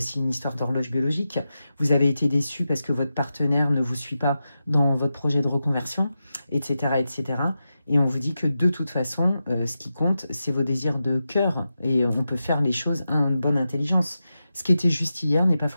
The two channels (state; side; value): inverted; both; correlation -0.91